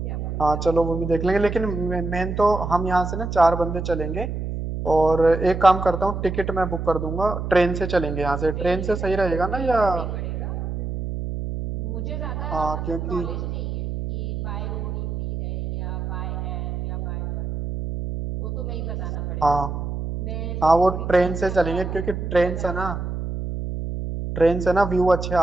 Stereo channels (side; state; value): right; noise; hum, 4 dB below the sound